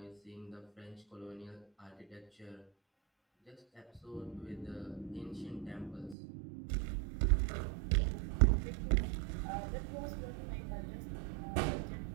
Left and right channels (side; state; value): left; drops out; at 6.2 s